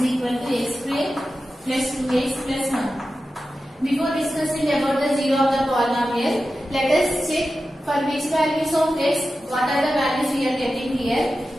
equal to x square plus 2x plus 1. Before discussing about the zero of the polynomial, let us check for which values of x, what are the values we are getting here.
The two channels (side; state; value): both; normal; correlation 0.93